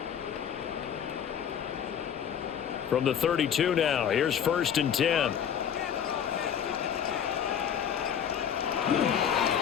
From the 32 now, here's 1st and 10.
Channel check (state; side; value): quieter; right; 8.5 dB